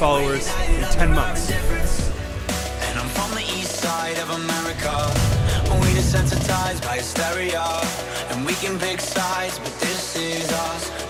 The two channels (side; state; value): both; identical; correlation 1.00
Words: in 10 months. And I'm from the east side of America. We desensitized by hysteria. And we can pick sides, but this is us.